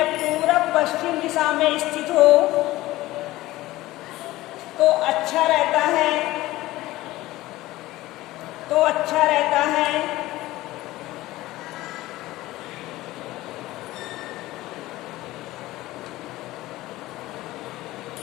पूरब पश्चिम दिशा में स्थित हो तो अच्छा रहता है, तो अच्छा रहता है।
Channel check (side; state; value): right; quieter; 17.4 dB